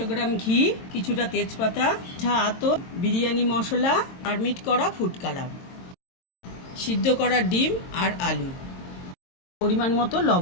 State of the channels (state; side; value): late; right; 22 ms